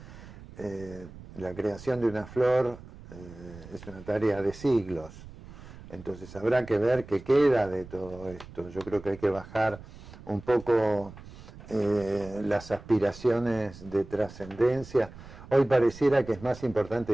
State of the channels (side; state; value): right; noise; rumble, 17 dB below the sound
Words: la creación de una flor es una tarea de siglos. Entonces habrá que ver qué queda de todo esto. Yo creo que hay que bajar un poco las aspiraciones de trascendencia. Hoy pareciera que es más